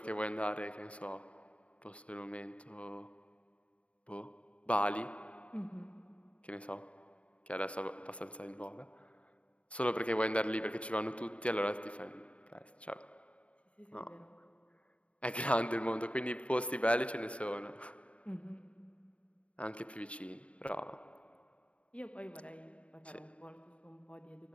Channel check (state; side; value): late; right; 0.063 ms